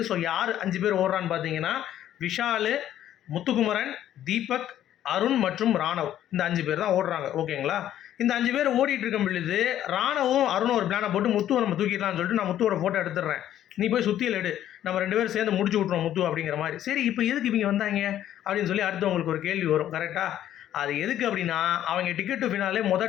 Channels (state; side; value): quieter; right; 11.6 dB